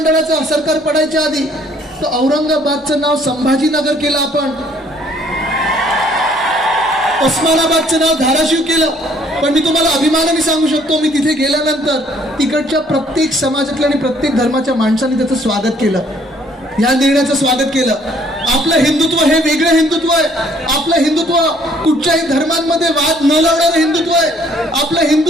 सरकार पडायच्या आधी, तो औरंगाबादचं नाव संभाजीनगर केलं, आपण उस्मानाबादचं नाव धाराशिव केलं. पण मी तुम्हाला अभिमानाने सांगू शकतो, मी तिथे गेल्यानंतर तिकडच्या प्रत्येक समाजातल्या आणि प्रत्येक धर्माच्या माणसांनी त्याचं स्वागत केलं, या निर्णयाचं स्वागत केलं. आपलं हिंदुत्व हे वेगळं हिंदुत्व आहे. आपलं हिंदुत्व कुठच्याही धर्मांमध्ये वाद न लावणारं हिंदुत्व आहे. आपलं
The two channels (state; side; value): normal; both; correlation 0.62